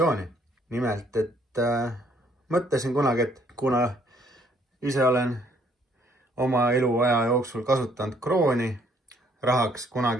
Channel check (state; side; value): normal; both; correlation 0.65